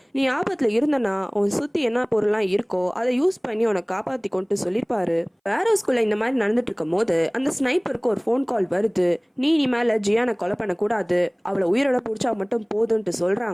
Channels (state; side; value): identical; both; correlation 1.00